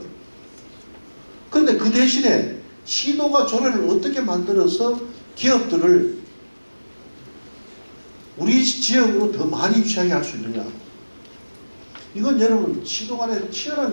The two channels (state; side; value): inverted; both; correlation -1.00